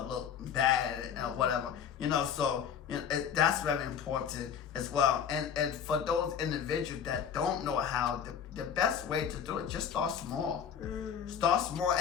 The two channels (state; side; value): quieter; right; 7.9 dB